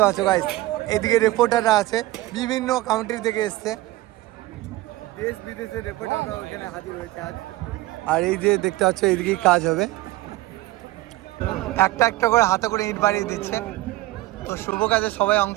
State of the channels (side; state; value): left; quieter; 17.9 dB